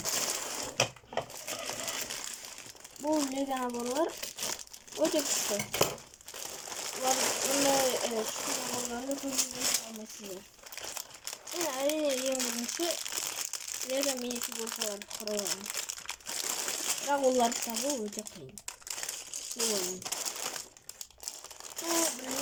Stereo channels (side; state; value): both; identical; correlation 1.00